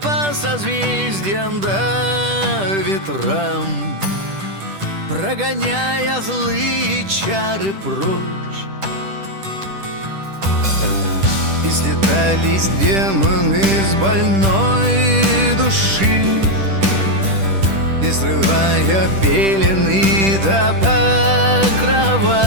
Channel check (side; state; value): left; late; 10 ms